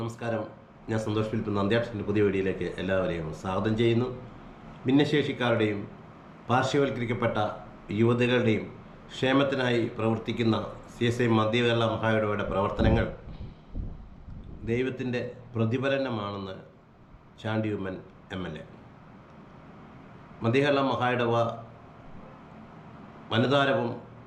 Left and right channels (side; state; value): both; identical; correlation 1.00